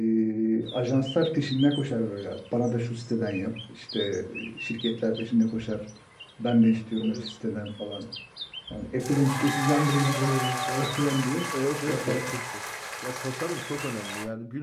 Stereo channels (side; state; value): both; identical; correlation 1.00